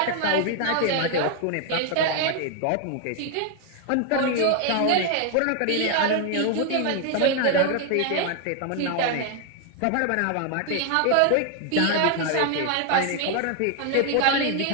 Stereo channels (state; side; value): different; both; correlation 0.00